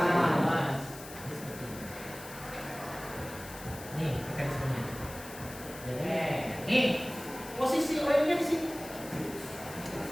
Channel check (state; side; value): noise; left; hiss, 15 dB below the sound